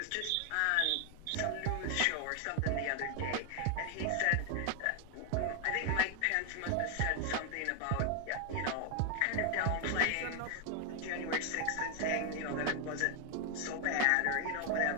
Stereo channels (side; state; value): both; different; correlation 0.00